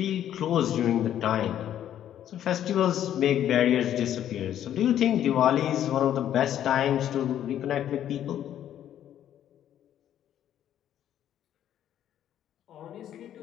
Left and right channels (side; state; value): right; quieter; 10.9 dB